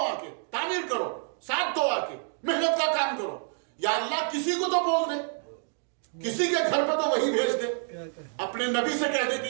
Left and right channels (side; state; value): left; silent; 56 dB below the other